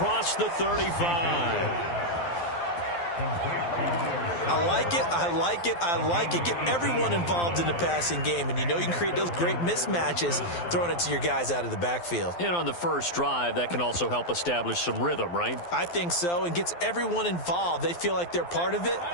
the 35. I like it, I like it, I like it. Get everyone involved in the passing game, and you know you can create those great mismatches throwing it to your guys out of the backfield. And on the first drive, that can also help establish some rhythm, right? I think so, and gets everyone involved. They feel like they're part of it,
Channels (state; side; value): late; right; 12 ms